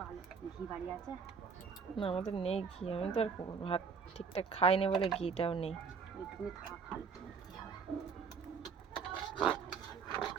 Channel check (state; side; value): quieter; left; 5.8 dB